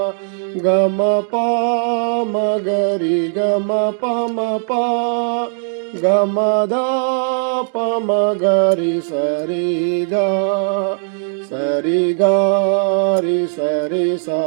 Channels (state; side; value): silent; left; digital silence